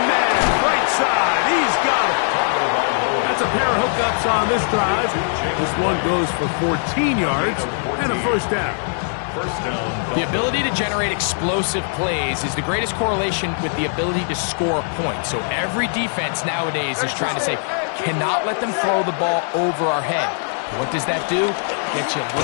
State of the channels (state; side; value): silent; right; digital silence